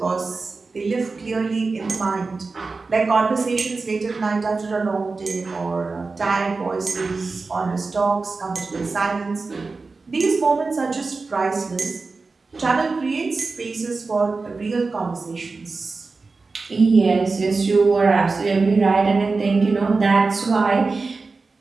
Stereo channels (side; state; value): left; quieter; 4.0 dB